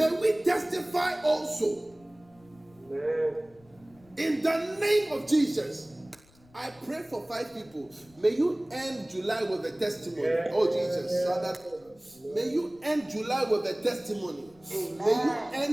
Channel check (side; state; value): left; noise; rumble, 29 dB below the sound